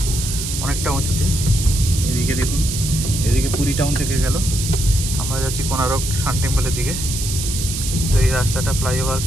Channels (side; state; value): right; noise; hiss, 5 dB below the sound